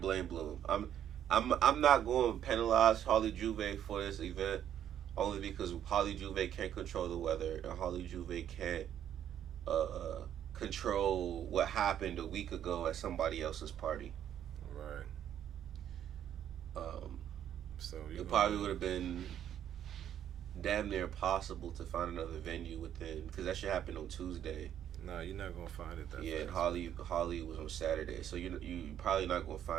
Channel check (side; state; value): left; quieter; 10.2 dB